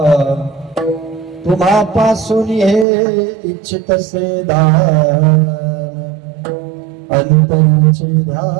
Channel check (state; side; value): drops out; left; at 2.9 s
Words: तुम्हापासून हे इच्छितसे दान, अंतरीचे